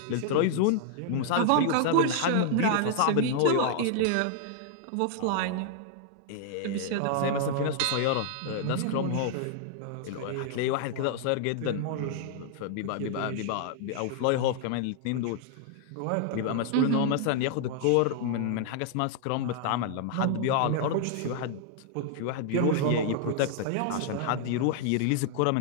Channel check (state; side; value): different; both; correlation -0.01